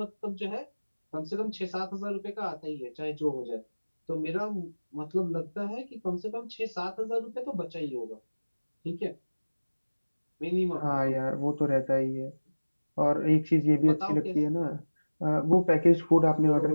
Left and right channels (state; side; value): inverted; both; correlation -1.00